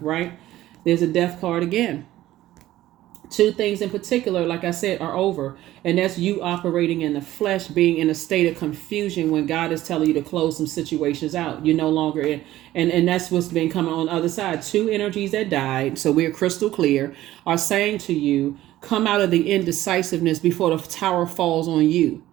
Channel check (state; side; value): quieter; left; 14.8 dB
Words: right? There's a death card again. Two things in particular, like I said, are over. And that's you operating in the flesh, being in a state of confusion when God is telling you to close some situations out. You're no longer in. And that's what's been coming on the other side. Two energies that died, so we're crystal clear, are saying to you, come out of the indecisiveness before the tower falls on you.